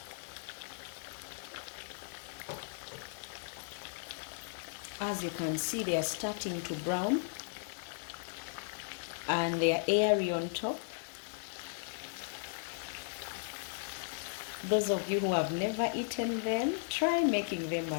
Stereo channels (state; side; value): silent; right; digital silence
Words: As you can see, they are starting to brown and they are airy on top. Those of you who have never eaten them, try making them